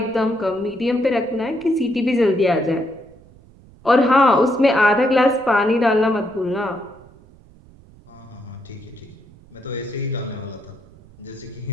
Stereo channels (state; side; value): noise; right; rumble, 25 dB below the sound